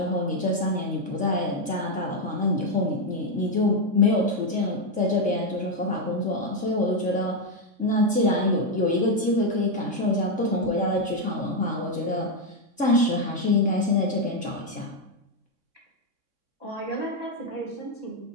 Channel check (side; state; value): left; late; 3.6 ms